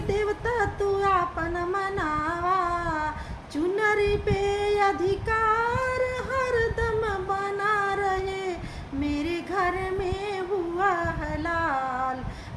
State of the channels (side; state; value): both; identical; correlation 1.00